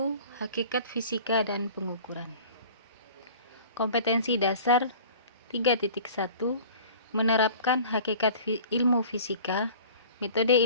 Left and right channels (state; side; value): inverted; both; correlation -0.45